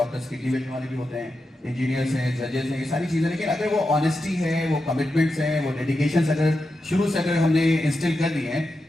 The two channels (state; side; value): normal; both; correlation 0.89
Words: किडनी बेचने वाले भी होते हैं, इंजीनियर्स हैं, जजेस हैं, ये सारी चीज़ें, लेकिन अगर वो ऑनेस्टी है, वो कमिटमेंट्स हैं, वो डेडिकेशन अगर शुरू से अगर हमने इंस्टिल कर दिए